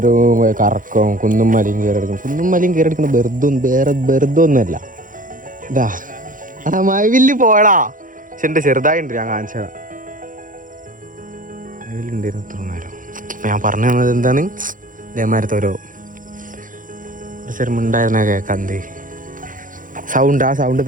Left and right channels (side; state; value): left; late; 0.39 ms